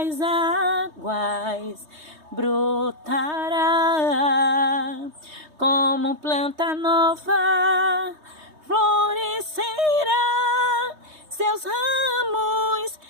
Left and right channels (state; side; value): late; left; 3.2 ms